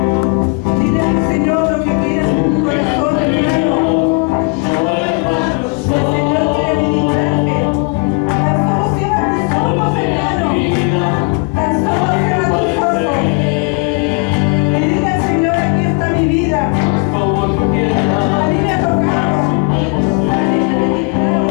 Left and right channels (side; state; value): right; quieter; 32.1 dB